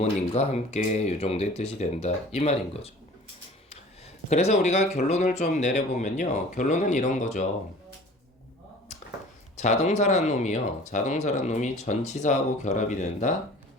함께 이 정도의 뜻이 된다. 이 말인 거죠. 그래서 우리가 결론을 좀 내려보면요. 결론은 이런 거죠. 자동사란 놈이 전치사하고 결합이 된다?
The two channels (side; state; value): both; normal; correlation 0.45